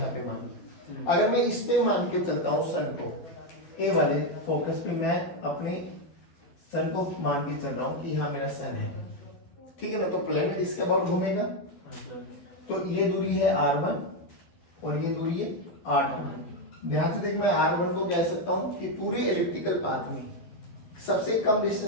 पे मान लो। अगर मैं इस पे मान के चलता हूँ सन को, ए वाले फोकस पे मैं अपने सन को मान के चल रहा हूँ कि यहाँ मेरा सन है, ठीक है ना, तो प्लेनेट इसके अबाउट घूमेगा, तो ये दूरी है r1 और ये दूरी है r2। ध्यान से देख, मैं r1 को कह सकता हूँ कि पूरे एलिप्टिकल पाथ में सबसे कम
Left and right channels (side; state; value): right; late; 12 ms